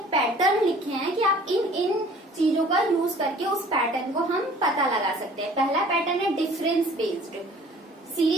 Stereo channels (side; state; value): both; normal; correlation 0.50